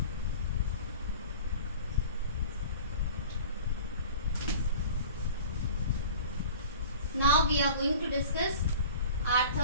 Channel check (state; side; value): inverted; both; correlation -0.41